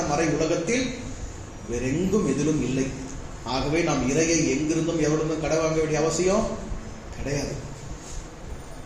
மறை உலகத்தில் வேறெங்கும் எதிலும் இல்லை. ஆகவே நாம் இறையை எங்கிருந்தும் எவரிடமும் கடை வாங்க வேண்டிய அவசியம் கிடையாது.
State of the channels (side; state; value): both; identical; correlation 1.00